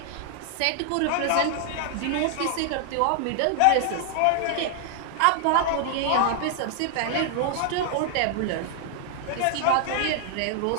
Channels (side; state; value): both; different; correlation 0.00